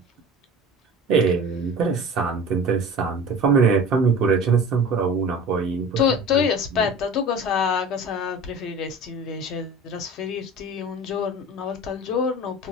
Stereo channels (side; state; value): both; normal; correlation 0.38